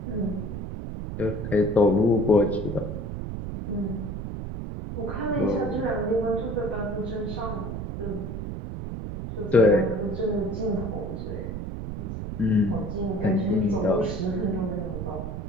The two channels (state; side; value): noise; right; rumble, 6 dB below the sound